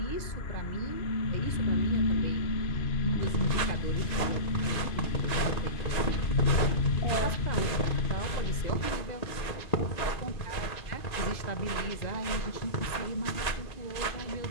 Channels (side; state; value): right; late; 2.5 ms